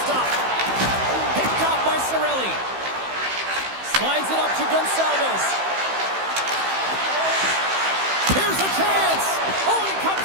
stop. Picked off by Cirelli. Slides it up to Gonsalves.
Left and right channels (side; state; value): left; late; 15 ms